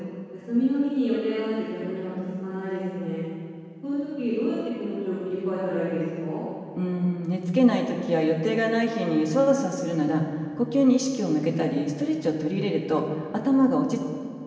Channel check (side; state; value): both; identical; correlation 1.00